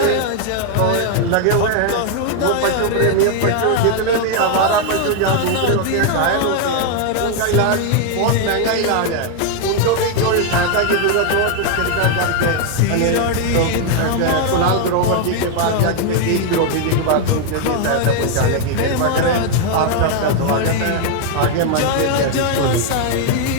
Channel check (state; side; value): different; both; correlation 0.01